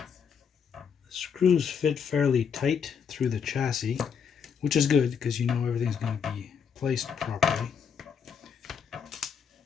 Screws fit fairly tight through the chassis, which is good because you know everything's going to be placed properly.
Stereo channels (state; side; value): quieter; right; 6.8 dB